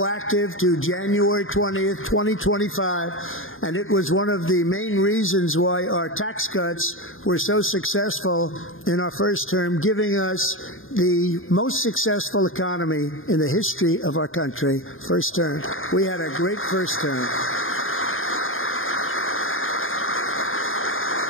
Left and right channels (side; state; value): right; late; 0.59 ms